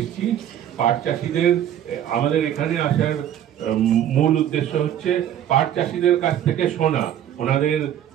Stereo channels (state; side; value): quieter; left; 10.7 dB